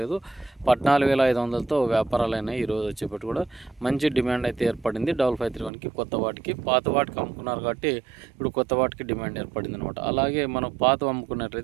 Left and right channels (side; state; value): left; drops out; at 5.7 s